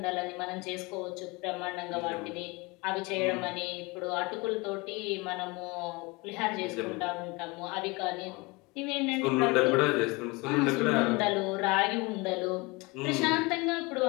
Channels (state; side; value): quieter; right; 25.3 dB